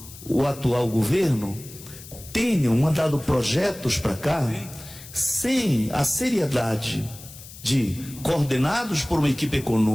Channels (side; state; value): left; noise; hiss, 17 dB below the sound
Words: o atual governo tenham mandado projetos para cá sem a seriedade de, coordenados por uma equipe